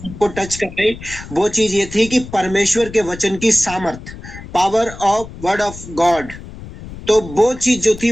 को टच कर रही, वो चीज ये थी कि परमेश्वर के वचन की सामर्थ, power of word of God. तो वो चीज जो थी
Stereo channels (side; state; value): left; noise; rumble, 14 dB below the sound